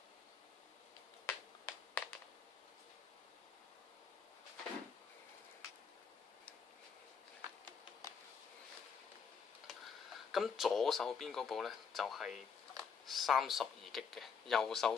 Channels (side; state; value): right; quieter; 6.3 dB